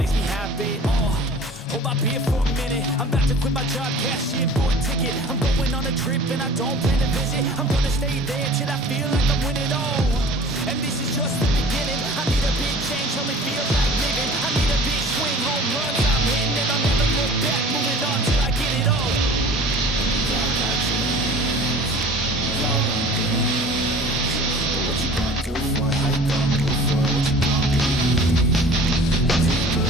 me happy. Hold my beer for a minute, I'm about to quit my job, cash in for a ticket. I'm going on a trip, and I don't plan to visit. I'm gonna stay there till I feel like I'm winning all. And this is just the beginning. I need a big change, help me feel like living. I need a big swing, home runs I'm hitting, and I'll never look back, moving on till I get it all. Y'all got dreams, y'all want things, but what you gonna do for it? How you gonna move for it? What you gonna be? What do you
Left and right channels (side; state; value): both; normal; correlation 0.45